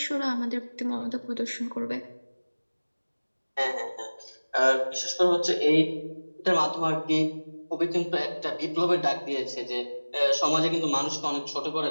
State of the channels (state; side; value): inverted; both; correlation -1.00